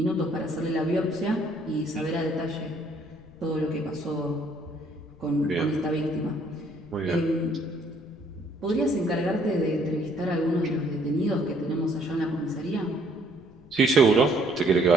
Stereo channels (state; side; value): noise; left; rumble, 25 dB below the sound